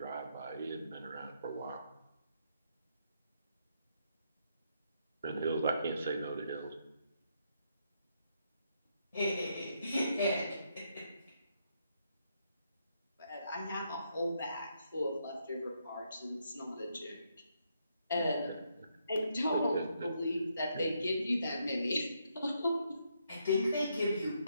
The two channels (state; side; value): inverted; both; correlation -0.77